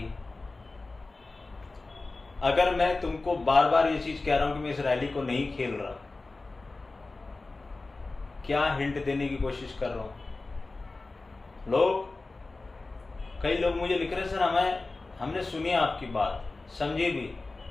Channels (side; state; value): right; quieter; 3.4 dB